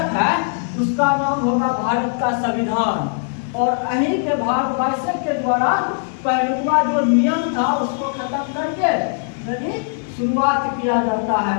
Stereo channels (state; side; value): silent; right; digital silence